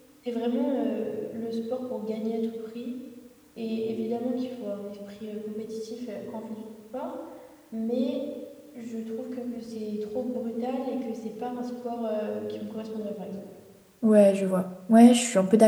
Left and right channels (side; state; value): both; identical; correlation 1.00